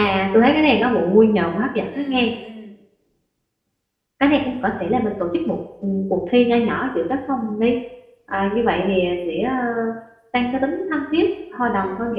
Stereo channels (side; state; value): both; identical; correlation 1.00